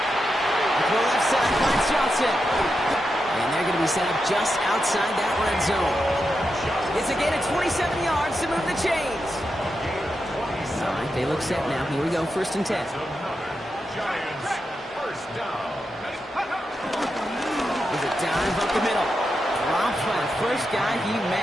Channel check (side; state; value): both; normal; correlation 0.87